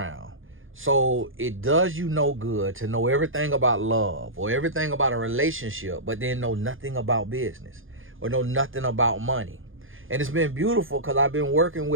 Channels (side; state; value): left; late; 0.59 ms